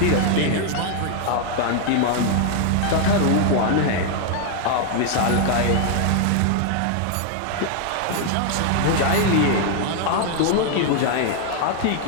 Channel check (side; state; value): both; different; correlation 0.00